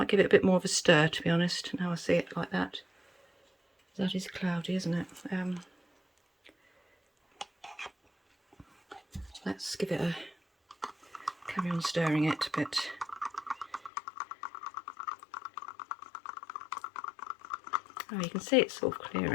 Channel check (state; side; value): drops out; right; at 13.9 s